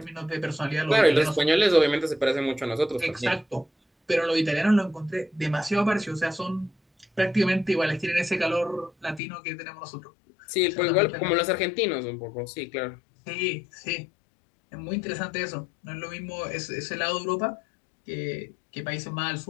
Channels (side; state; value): right; drops out; at 9.2 s